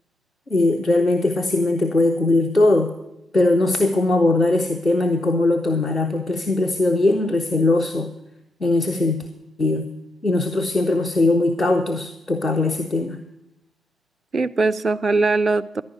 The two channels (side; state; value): both; normal; correlation 0.81